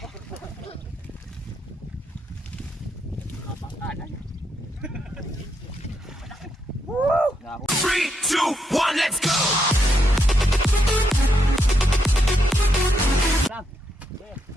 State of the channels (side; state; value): both; normal; correlation 0.79